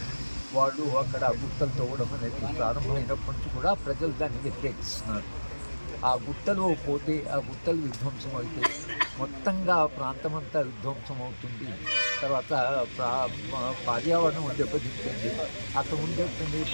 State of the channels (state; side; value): inverted; both; correlation -1.00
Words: వాళ్ళు అక్కడ గుట్టలు తవ్వడం అనేది ప్రారంభమైనప్పటి నుంచి కూడా ప్రజలు దాన్ని వ్యతిరేకిస్తున్నారు. ఆ గుట్టలు పోతే, ఆ గుట్టలు విధ్వంసం అయితే మొత్తంగా ప్రాంతం అంతా విధ్వంసం అవుతుంది. తర్వాత పర్యావరణం దెబ్బతింటుంది. అక్కడ ఉండేటువంటి